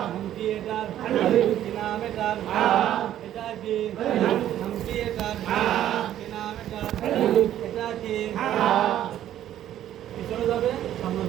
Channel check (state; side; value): quieter; left; 11.8 dB